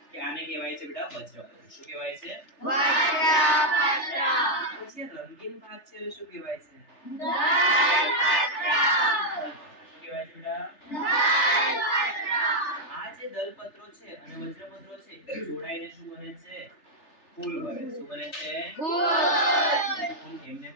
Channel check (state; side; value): late; right; 3.4 ms